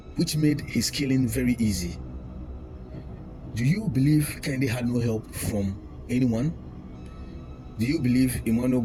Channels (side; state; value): both; identical; correlation 1.00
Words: which made his killing very easy. Do you believe Kehinde had no help from anyone? Do you believe Emmanuel